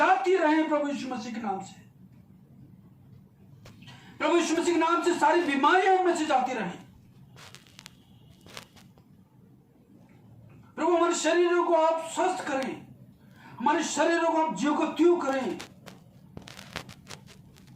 रहें प्रभु यीशु मसीह के नाम से, प्रभु यीशु मसीह के नाम से सारी बीमारियां इनमें से जाती रहें। प्रभु हमारे शरीरों को आप स्वस्थ करें, हमारे शरीरों को आप जीव को त्यों करें,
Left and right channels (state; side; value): identical; both; correlation 1.00